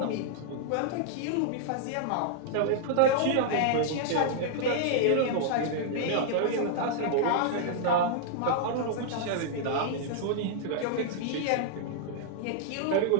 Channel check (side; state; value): both; different; correlation -0.01